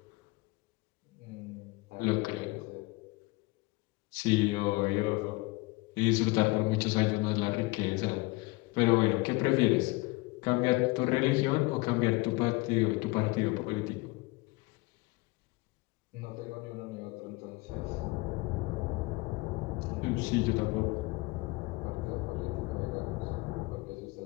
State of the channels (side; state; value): right; quieter; 23.6 dB